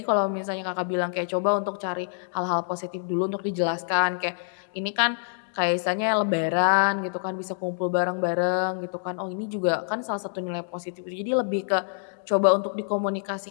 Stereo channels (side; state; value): right; silent; digital silence